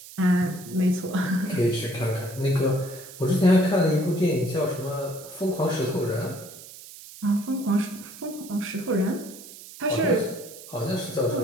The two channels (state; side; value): noise; right; hiss, 16 dB below the sound